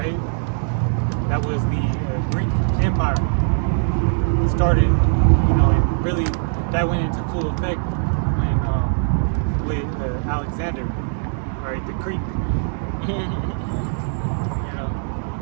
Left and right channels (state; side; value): silent; left; digital silence